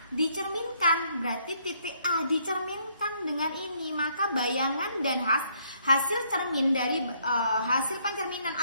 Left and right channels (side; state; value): both; inverted; correlation -0.69